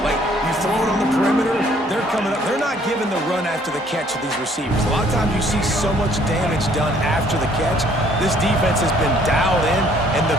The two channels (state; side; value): normal; both; correlation 0.61